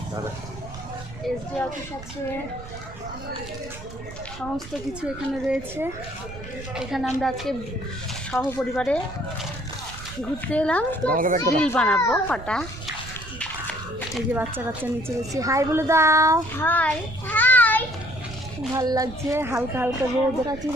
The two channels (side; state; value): right; noise; rumble, 14 dB below the sound